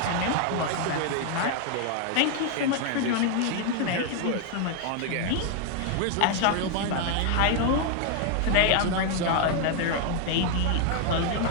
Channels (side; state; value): both; different; correlation 0.00